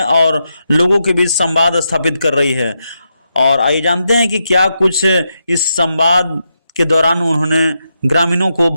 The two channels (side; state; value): both; inverted; correlation -0.84